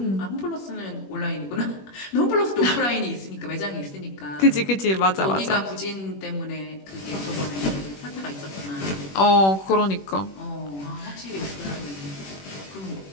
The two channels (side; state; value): right; late; 21 ms